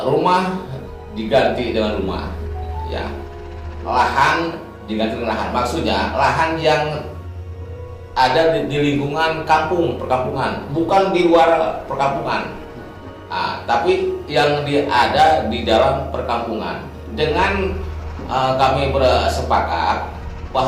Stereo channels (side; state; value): both; identical; correlation 1.00